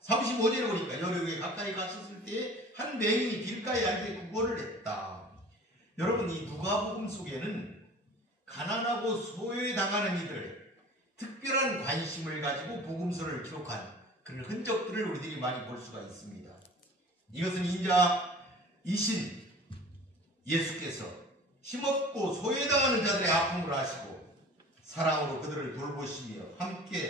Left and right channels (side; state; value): both; normal; correlation 0.44